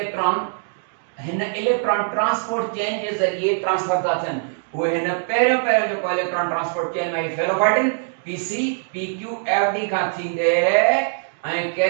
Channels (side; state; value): left; silent; digital silence